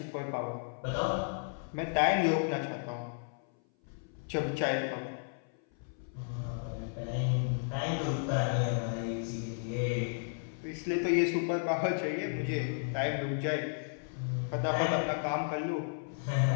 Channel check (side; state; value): right; silent; 55 dB below the other